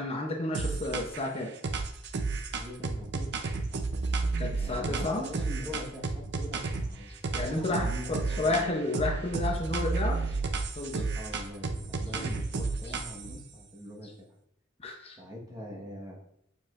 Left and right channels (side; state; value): both; normal; correlation 0.59